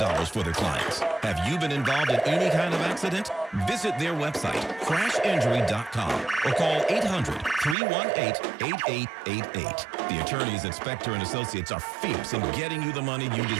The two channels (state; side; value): drops out; left; at 7.8 s